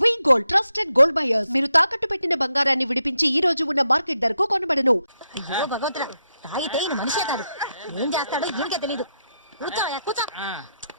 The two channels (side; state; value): both; inverted; correlation -0.83